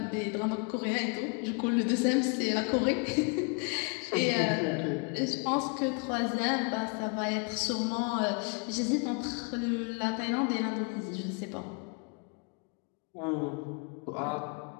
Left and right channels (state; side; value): quieter; right; 36.1 dB